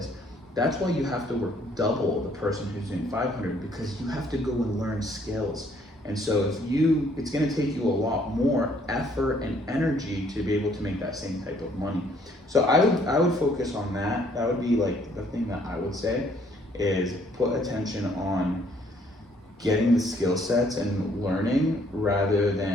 That's why you have to work double the person who's doing 500, because you have to go and learn skills. And so it's going to take you a lot more effort and energy to be able to make that same type of money. So I would focus on that. That would be like the thing that I would say is put attention on getting the skill sets and learning rather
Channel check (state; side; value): normal; both; correlation 0.64